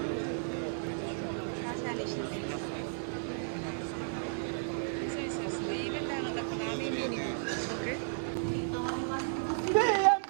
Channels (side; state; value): left; silent; digital silence